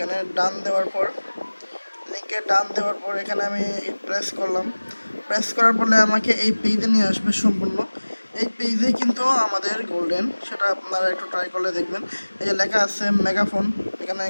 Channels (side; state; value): both; inverted; correlation -1.00